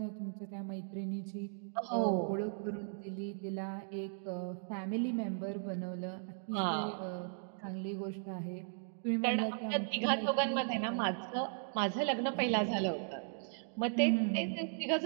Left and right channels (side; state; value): left; silent; digital silence